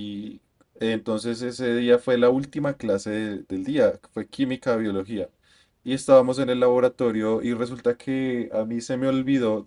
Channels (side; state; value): both; identical; correlation 1.00